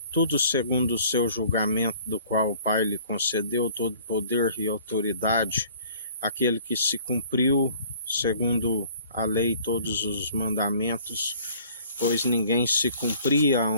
tudo segundo o seu julgamento, do qual o Pai lhe concedeu todo poder e autoridade, aquele que se cumpriu segundo a lei todos os mandamentos, pois ninguém se cumpria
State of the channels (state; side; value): inverted; both; correlation -0.53